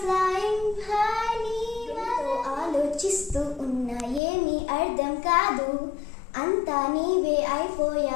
ఫ్లయింగ్ హై నీ. ఆలోచిస్తూ ఉన్నా ఏమీ అర్థం కాదు, అంతా నీవే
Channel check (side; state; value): right; drops out; at 4.2 s